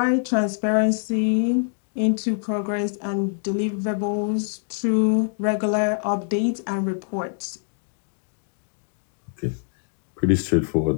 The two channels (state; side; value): silent; right; digital silence